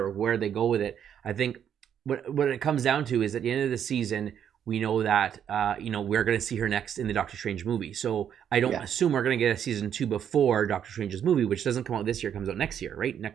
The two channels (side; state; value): left; quieter; 9.0 dB